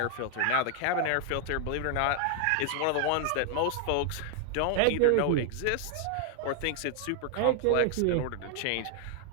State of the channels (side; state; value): both; different; correlation 0.00